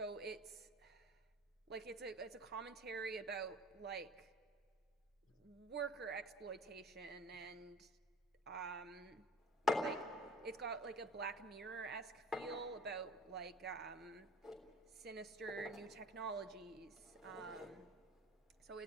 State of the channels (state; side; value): normal; both; correlation 0.43